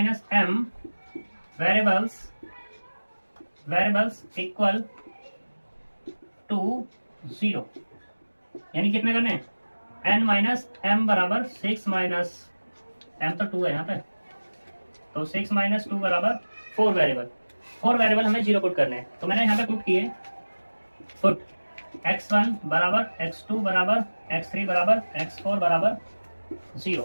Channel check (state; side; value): inverted; both; correlation -1.00